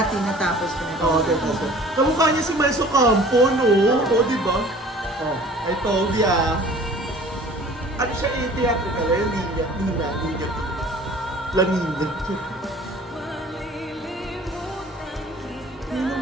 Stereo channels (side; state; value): both; normal; correlation 0.48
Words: Tinatapos ko na. Oo, tapos. Kamukha niya si Maiso Campo, no? Oo, di ba? Oh, I told ya. Ano siya theatrical? Nina. La Nina.